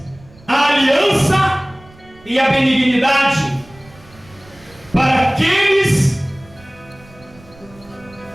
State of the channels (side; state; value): right; noise; rumble, 25 dB below the sound